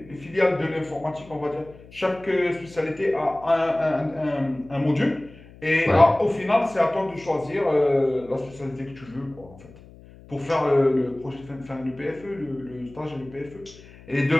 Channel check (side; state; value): left; noise; hum, 21 dB below the sound